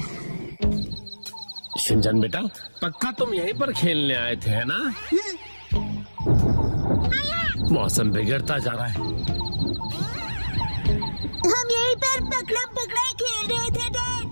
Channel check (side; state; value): both; inverted; correlation -1.00